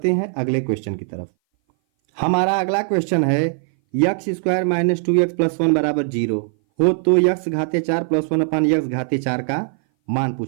हैं अगले क्वेश्चन की तरफ। हमारा अगला क्वेश्चन है, x² - 2x + 1 बराबर 0 हो तो x घाते 4 + 1/x घाते 4 का मान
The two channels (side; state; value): left; silent; 59 dB below the other